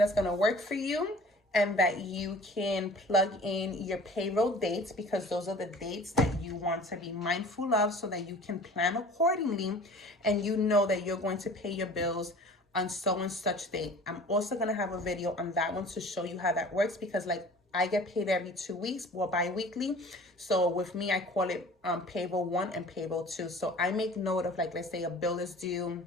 gonna work for you and that you can plug in your payroll dates, because those are the dates that you want to be mindful of so that you can plan accordingly and you know that you're going to pay your bills on so and such date. I'm also gonna have a video on that one to show you how that works, because like I get paid every 2 weeks or bi-weekly. So with me, I call it payroll 1 and payroll 2. So I make note of, like, let's say a bill is due,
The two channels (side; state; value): both; normal; correlation 0.45